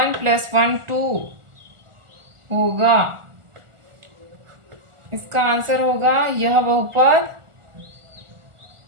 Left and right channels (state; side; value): late; left; 1.4 ms